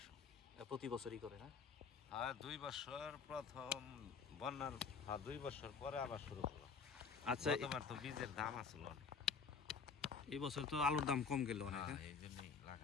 প্রতি বছরই করে না? হ্যাঁ, 2 বছর প্রথম বন্যার 2 বছর পরে আবার শুরু করলো। আচ্ছা, গতবার তো বীজের দাম আসলো অনেক। এই বছর তো আলুর দাম কম গেল অনেক। এই জন্যই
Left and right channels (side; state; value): right; quieter; 5.6 dB